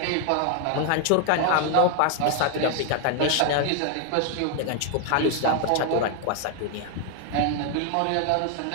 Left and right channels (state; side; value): different; both; correlation 0.00